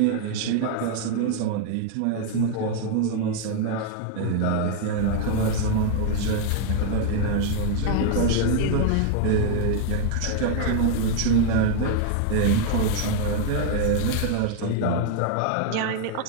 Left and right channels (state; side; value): different; both; correlation 0.00